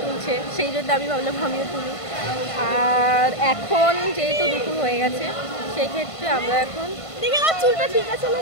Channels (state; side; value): late; right; 1.5 ms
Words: তুলছে, সেই জন্য আমি ভাবলাম আমিও তুলি। আর এখন যেহেতু দুপুর হয়ে গেছে, সেই ক্ষেত্রে আমরা এখন চুলটা ঠিক আছে না,